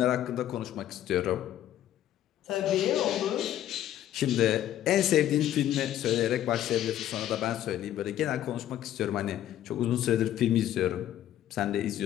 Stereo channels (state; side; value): quieter; right; 12.0 dB